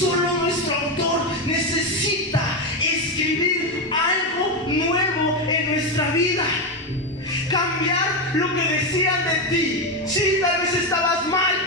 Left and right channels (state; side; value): normal; both; correlation 0.10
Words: nuestro autor necesita escribir algo nuevo en nuestra vida, cambiar lo que decían de ti. Sí, tal vez estabas mal